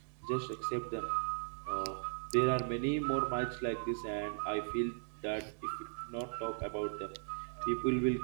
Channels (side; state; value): left; silent; digital silence